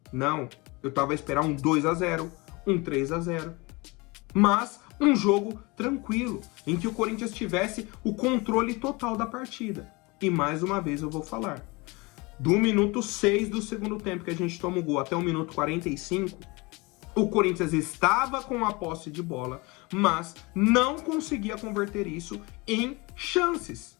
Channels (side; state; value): right; quieter; 25.5 dB